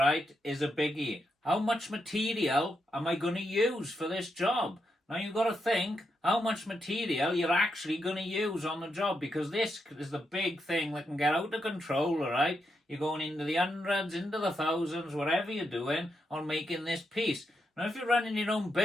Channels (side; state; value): both; normal; correlation 0.83